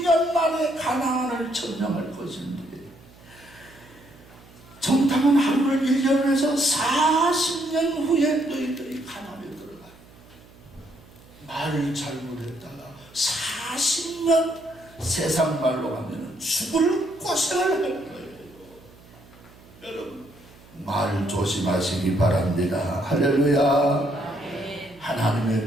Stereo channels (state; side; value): noise; right; hum, 24 dB below the sound